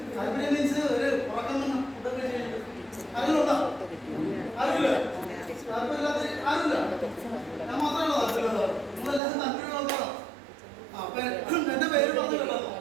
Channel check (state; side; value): drops out; left; at 9.2 s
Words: താല്പര്യം മീൻസ് ഒരു ഉറക്കം ഫുഡൊക്കെ കഴിച്ചിട്ട് ആരെങ്കിലും ഉണ്ടോ? ആരുമില്ല? താല്പര്യമില്ലാത്ത ആരുമില്ല? ഞാൻ മാത്രമേ താല്പര്യമുള്ളൂ. നിങ്ങളെല്ലാവരും താല്പര്യമുള്ളതാണോ? അപ്പൊ എന്റെ പേര് പറഞ്ഞിട്ടുണ്ടോ?